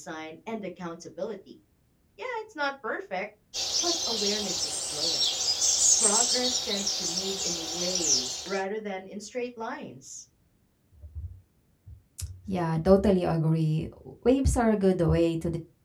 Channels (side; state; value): both; identical; correlation 1.00